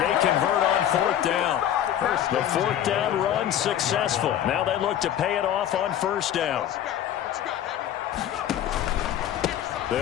convert on 4th down. The 4th down run successful. Now they look to pay it off on 1st down.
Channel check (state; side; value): quieter; right; 10.9 dB